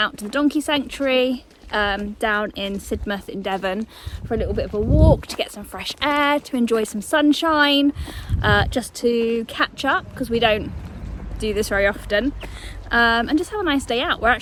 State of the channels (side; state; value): both; identical; correlation 1.00